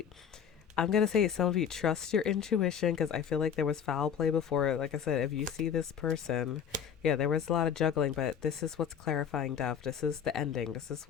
I'm going to say some of you trust your intuition, because I feel like there was foul play before. Like I said, if you see this person, yeah, there was a lot of juggling, but this is what's clarifying death. This is the ending. This is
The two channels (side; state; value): right; quieter; 7.9 dB